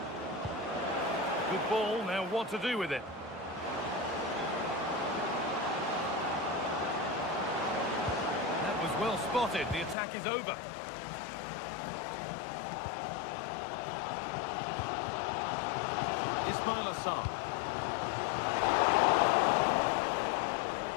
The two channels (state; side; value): drops out; right; at 10.0 s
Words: Good ball, now what to do with it? That was well spotted, the attack is over. Ismail Assar.